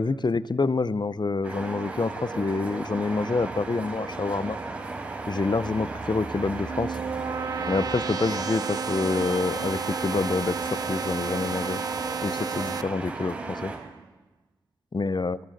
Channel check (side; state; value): both; normal; correlation 0.75